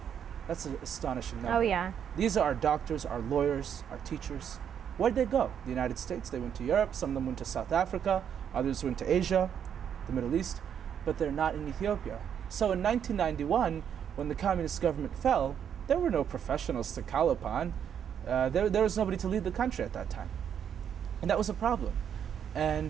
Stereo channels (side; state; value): left; quieter; 8.5 dB